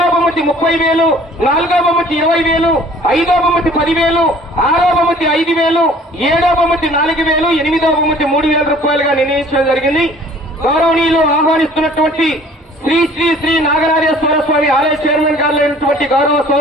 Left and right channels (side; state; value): both; normal; correlation 0.52